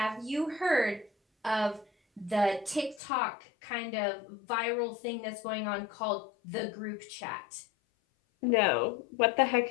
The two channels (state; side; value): drops out; right; at 3.0 s